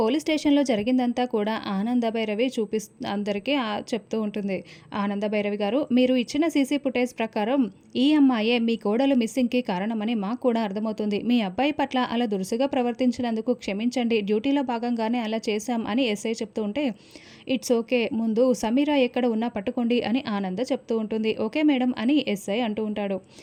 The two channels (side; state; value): both; identical; correlation 1.00